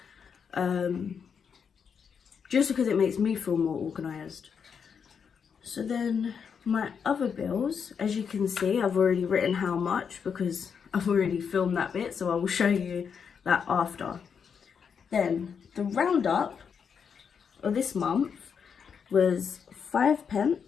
Just because it makes me feel more organised. So then my other bills, as you can see, I've already written how much because I've already filmed that bit, so I will show you that after. Then the roundup of this month was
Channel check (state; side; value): quieter; right; 6.7 dB